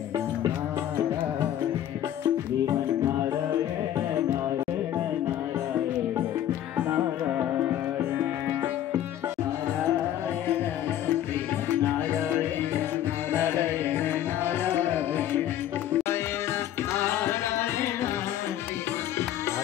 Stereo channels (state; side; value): quieter; right; 11.5 dB